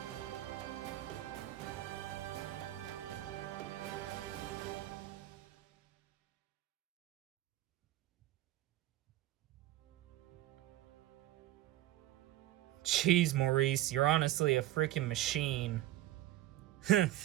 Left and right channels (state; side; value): quieter; left; 14.7 dB